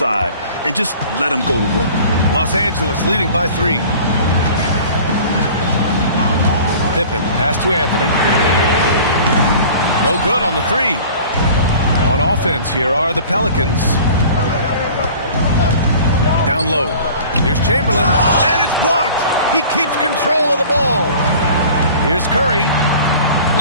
and just let him go to work. Los Angeles leading by 3. Pippen, pass to Anthony. No good on the 3. On offense, here are the Pelicans. Down low. Here's Chamberlain, and it's blocked. He keeps control of the ball. Here's Curry.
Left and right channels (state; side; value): inverted; both; correlation -0.44